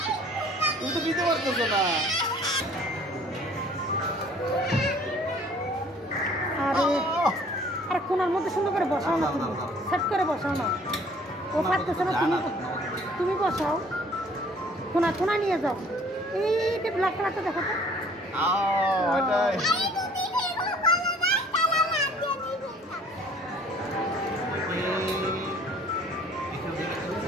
তুমি তো নিতে পারতেছো না। আর কোনার মধ্যে সুন্দর করে বসাও না, তুমি সেট করে বসাও না। ও পারতেছে না, তুমি বসাও। কোনা নিয়ে যাও। এইটা ব্ল্যাক কালারটা দেখো তো। এটাই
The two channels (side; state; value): both; normal; correlation 0.55